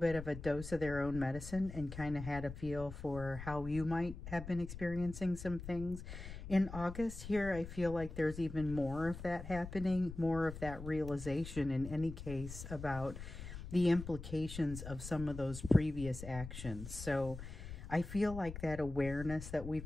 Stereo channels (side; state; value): left; noise; rumble, 10 dB below the sound